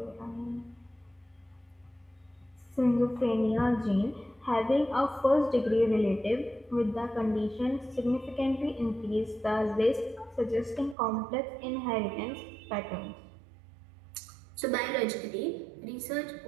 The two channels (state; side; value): drops out; left; at 11.0 s